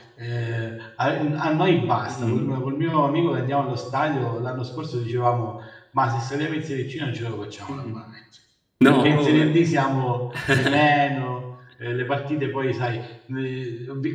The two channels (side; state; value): both; identical; correlation 1.00